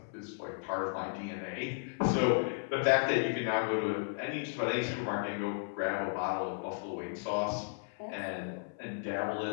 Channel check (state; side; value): silent; right; 55 dB below the other